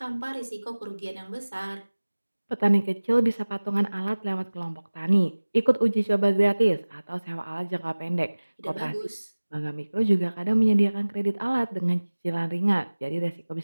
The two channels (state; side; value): inverted; both; correlation -1.00